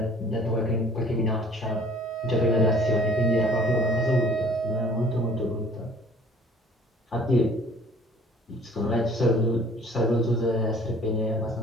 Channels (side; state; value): both; normal; correlation 0.53